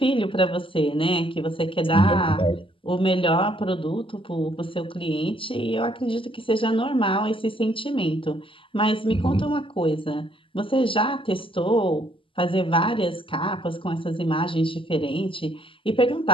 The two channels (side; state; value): right; late; 0.25 ms